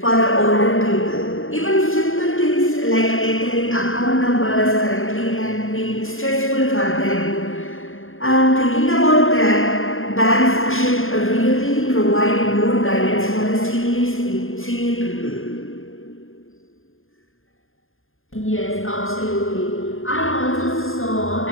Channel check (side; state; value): right; late; 0.60 ms